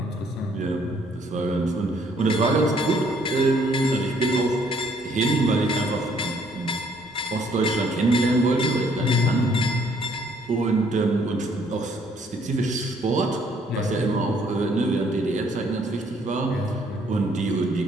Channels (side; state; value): both; normal; correlation 0.64